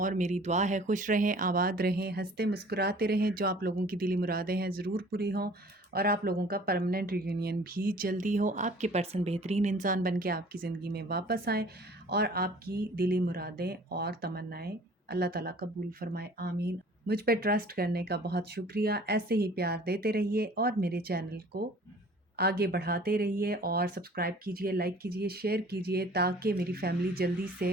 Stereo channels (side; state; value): both; normal; correlation 0.50